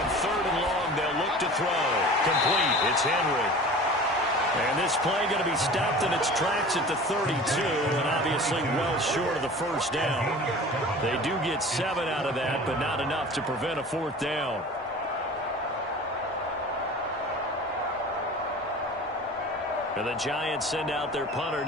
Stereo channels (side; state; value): both; normal; correlation 0.40